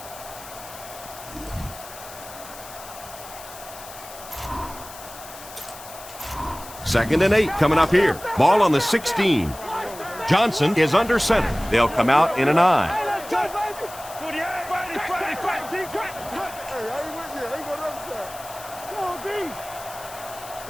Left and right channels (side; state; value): left; noise; hiss, 16 dB below the sound